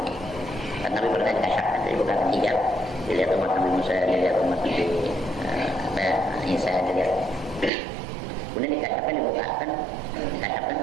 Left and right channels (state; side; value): drops out; left; at 7.7 s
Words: Dan Nabi pernah dikasyak, jadi bukan hijab. Dilihat umat Nabi Musa, dilihat umat Nabi Isa, dilihat. Kemudian dikasyakkan, dibukakan, dikasyakkan